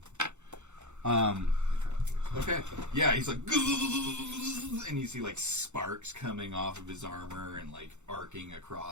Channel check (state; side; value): late; left; 0.83 ms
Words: Okay. Yeah, he's like, and you see like sparks coming off of his armor and like arcing